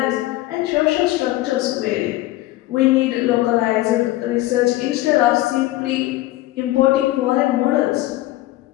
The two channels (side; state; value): right; quieter; 17.1 dB